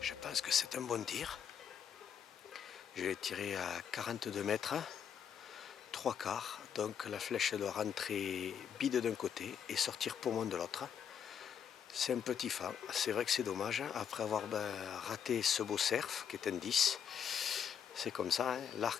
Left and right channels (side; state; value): right; quieter; 8.2 dB